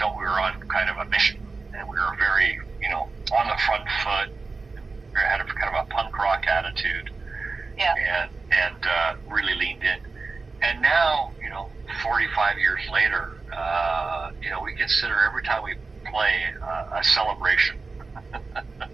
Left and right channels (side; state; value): left; quieter; 4.0 dB